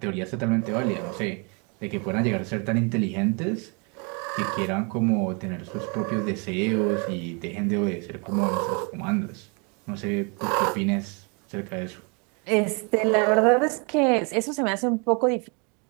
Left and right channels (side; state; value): left; quieter; 33.8 dB